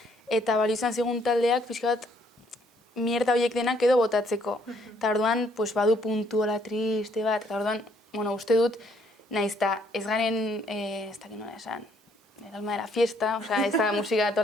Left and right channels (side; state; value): both; normal; correlation 0.67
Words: eta bali izan zigun taldeak pixka bat mierda horiek denak edo botatzeko. Eta orduan, badu puntu hola triste bat, eta orduan, uste dut, nahiz eta ez garen, ez dakit nola esan, el alma de la fiesta, ez da musika